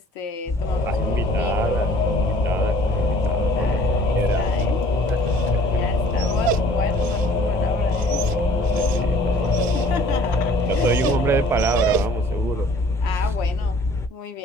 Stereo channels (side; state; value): both; normal; correlation 0.54